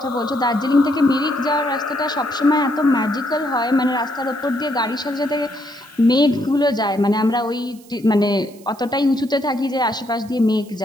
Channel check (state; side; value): noise; right; hiss, 25 dB below the sound